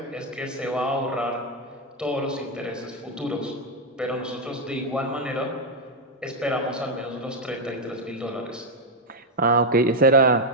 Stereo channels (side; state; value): both; normal; correlation 0.03